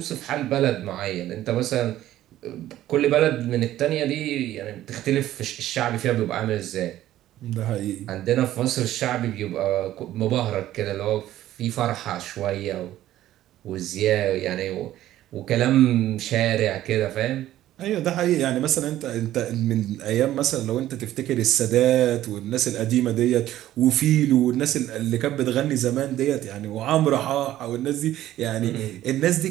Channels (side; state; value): left; quieter; 13.6 dB